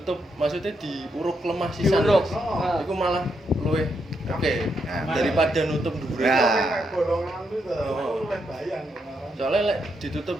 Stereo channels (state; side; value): normal; both; correlation 0.80